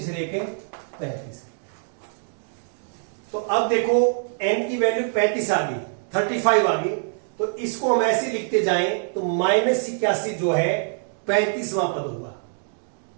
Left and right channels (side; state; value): left; silent; digital silence